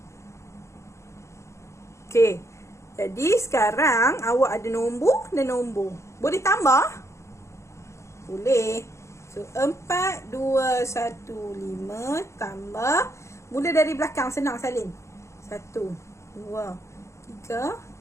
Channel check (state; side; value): late; right; 0.14 ms